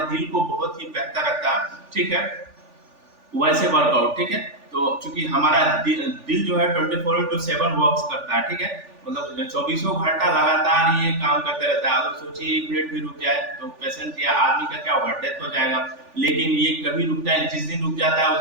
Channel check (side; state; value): left; late; 3.4 ms